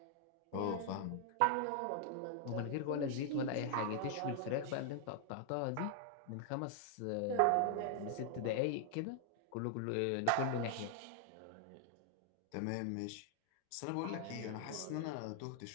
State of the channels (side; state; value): both; different; correlation 0.00